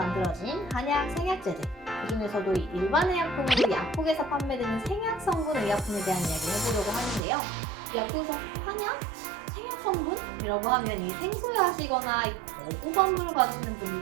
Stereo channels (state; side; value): drops out; left; at 7.2 s